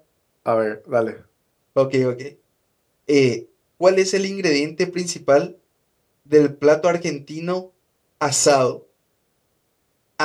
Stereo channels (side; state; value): both; identical; correlation 1.00